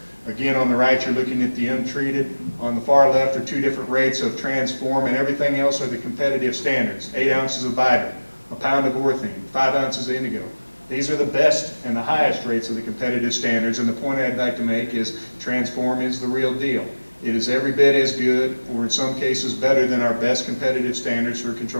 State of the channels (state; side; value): inverted; both; correlation -1.00